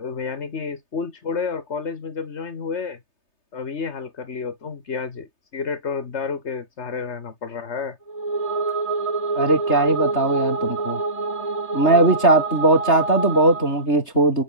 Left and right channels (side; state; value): right; late; 3.3 ms